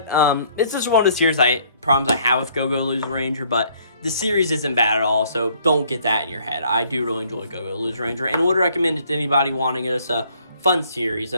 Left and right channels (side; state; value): both; inverted; correlation -0.63